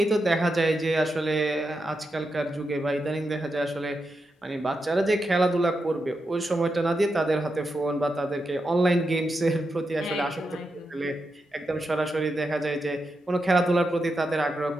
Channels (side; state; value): both; normal; correlation 0.86